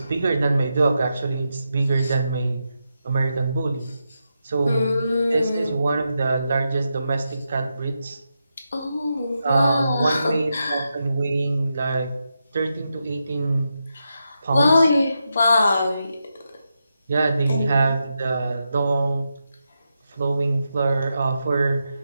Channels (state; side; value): inverted; both; correlation -0.86